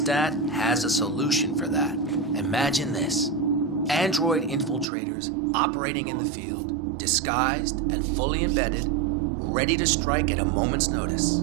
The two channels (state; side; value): drops out; left; at 4.9 s